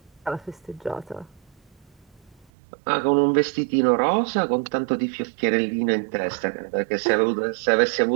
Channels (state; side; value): drops out; left; at 2.5 s